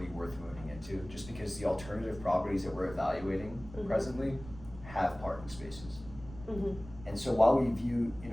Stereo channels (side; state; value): right; noise; rumble, 16 dB below the sound